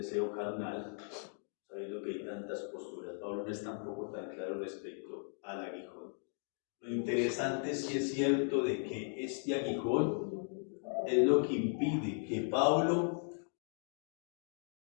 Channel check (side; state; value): right; silent; 53 dB below the other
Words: carnal, sabiendo que hay tantas posturas. Pablo no es tampoco tan claro respecto al aguijón. Lo interesante sí es cierto de que este aguijón es lo que impide que Pablo